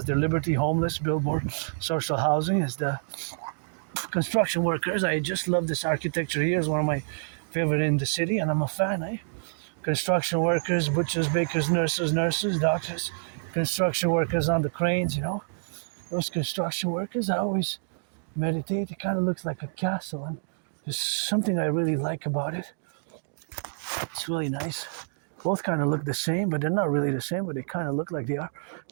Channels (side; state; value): left; silent; digital silence